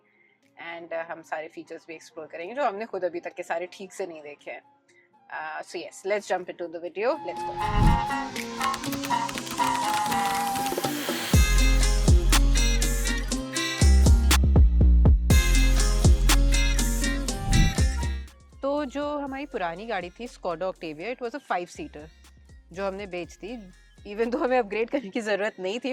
एंड हम सारे फीचर्स भी एक्सप्लोर करेंगे जो हमने खुद अभी तक के सारे ठीक से नहीं देखे हैं। So yes, let's jump into the video. Let's go. तो जो हमारी पुरानी गाड़ी थी Skoda Octavia, it was a 5-सीटर जो हमने बेच दी। इवन तो हमें अपग्रेड करने की ज़रूरत नहीं थी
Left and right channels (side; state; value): both; identical; correlation 1.00